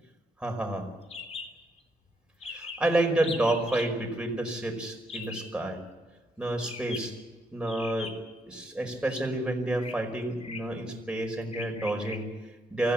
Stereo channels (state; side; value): normal; both; correlation 0.76